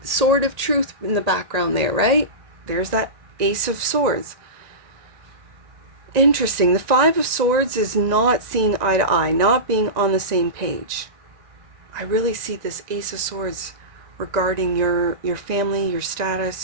sword of truth in the background there, right? There's that Ace of Swords. Interesting. The Five of Swords is not seeing eye to eye, not being on the same page. I really see this Ace of Swords regarding your family, your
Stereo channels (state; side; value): late; left; 1.9 ms